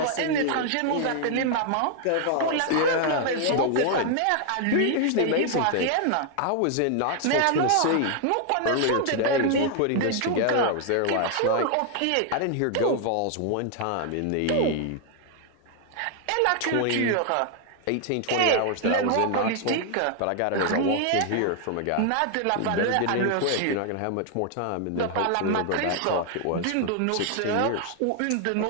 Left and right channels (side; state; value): both; different; correlation 0.00